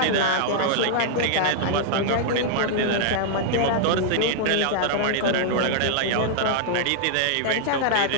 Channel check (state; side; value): different; both; correlation -0.01